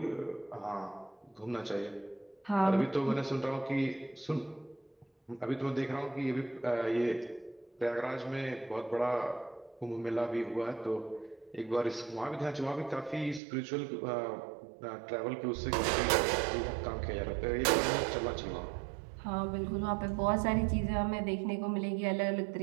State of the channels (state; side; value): drops out; left; at 13.4 s